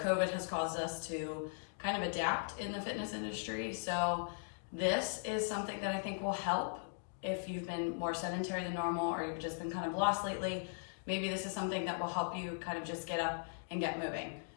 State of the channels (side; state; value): right; silent; digital silence